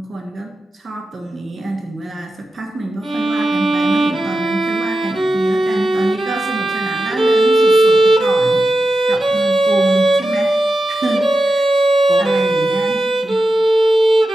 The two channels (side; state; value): both; normal; correlation 0.91